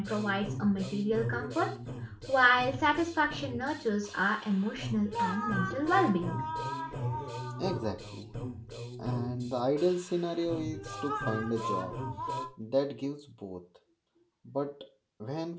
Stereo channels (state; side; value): identical; both; correlation 1.00